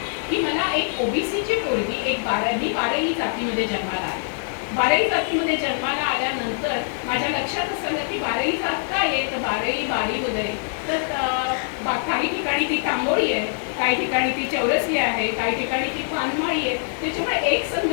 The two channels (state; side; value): silent; right; digital silence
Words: की मला एक OBCची पोरगी, मी बाराही जातीमध्ये जन्माला आले. बाराही जातीमध्ये जन्माला आल्यानंतर माझ्या लक्षात असं की बाराही जात काय आहे, तर बारी वगैरे, तर काही ठिकाणी ती तांबोळी आहे, काही ठिकाणी ती चौरसी आहे, काही ठिकाणी ती पानमाळी आहे. त्याच्यामुळे एक